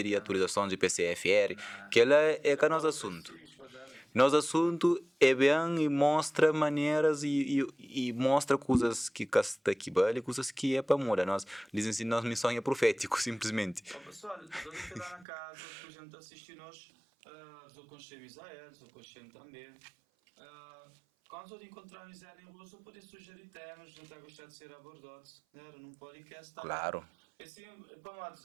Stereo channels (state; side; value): drops out; left; at 15.2 s